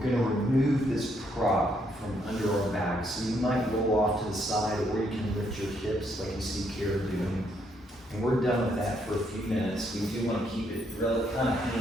going to remove this prop from under our back, so you might roll off to the side, or you can lift your hips like you see Kara doing. And we're done with that for a few minutes. We do want to keep it kind of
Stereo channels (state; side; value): normal; both; correlation 0.73